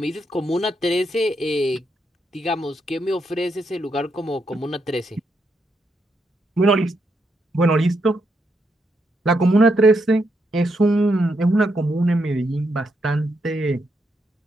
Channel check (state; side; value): normal; both; correlation 0.80